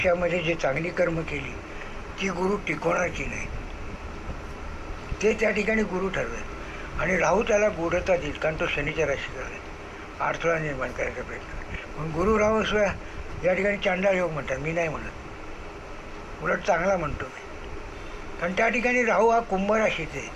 जे चांगली कर्म केली ती गुरु टिकवणार की नाही ते त्या ठिकाणी गुरु ठरवेल. आणि राहू त्याला गूढता देईल, कारण तो शनीच्या राशीत आहे. अडथळा निर्माण करायचा प्रयत्न करेल. पण गुरु राहू या ठिकाणी चांडाळ योग म्हणतात, मी नाही म्हणत, उलट चांगला म्हणतो मी. कारण त्या ठिकाणी राहू हा कुंभ राशीत आहे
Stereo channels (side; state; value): both; identical; correlation 1.00